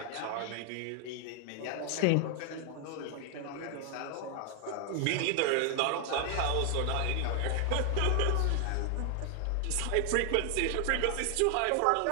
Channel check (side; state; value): both; different; correlation 0.00